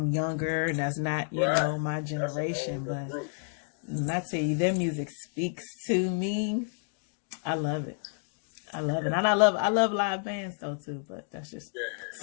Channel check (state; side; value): silent; right; 58 dB below the other